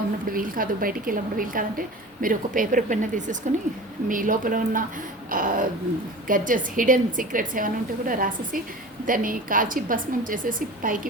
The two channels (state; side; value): normal; both; correlation 0.36